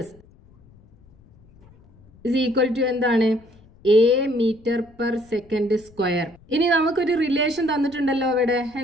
is equal to എന്താണ്? A metre per second square. ഇനി നമുക്കൊരു റിലേഷൻ തന്നിട്ടുണ്ടല്ലോ ഇവിടെ.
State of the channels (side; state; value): left; noise; rumble, 27 dB below the sound